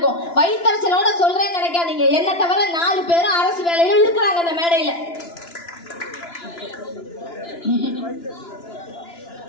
வயிற்றுச்சலோட சொல்றேன்னு நினைக்காதீங்க. என்ன தவிர 4 பேரும் அரசு வேலையில இருக்கிறாங்க இந்த மேடையில.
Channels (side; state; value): right; late; 2.9 ms